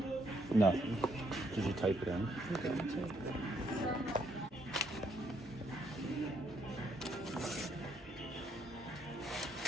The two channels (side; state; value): both; normal; correlation 0.72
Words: Nothing. Did you type it in? I'm going to.